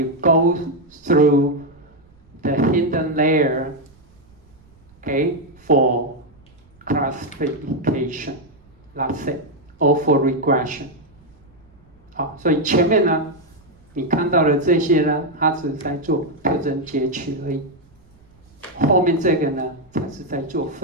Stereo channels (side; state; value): right; noise; rumble, 29 dB below the sound